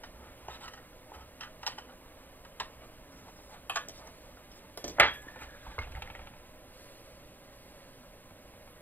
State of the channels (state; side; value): late; right; 0.089 ms